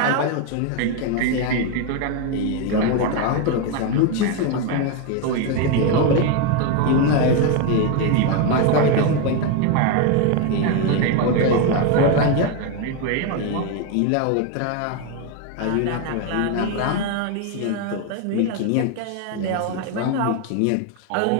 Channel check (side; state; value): both; different; correlation 0.02